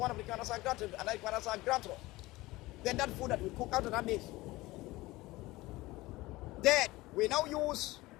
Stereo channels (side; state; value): right; quieter; 19.6 dB